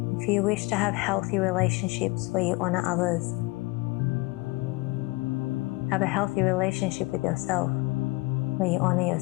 If you wish to have healthy relationships where you honor others, have a healthy relationship with yourself where you honor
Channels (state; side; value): quieter; right; 23.9 dB